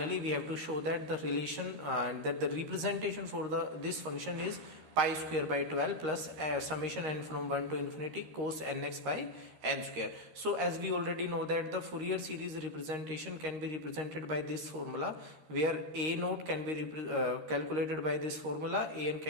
we have to show that the relation that the representation for this function is pi square by 12 plus summation n from 1 to infinity cos nx by n square. So as we already know that the Fourier series representation can be represented by this formula, where a naught can be calculated by this formula, an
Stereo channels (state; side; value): late; left; 13 ms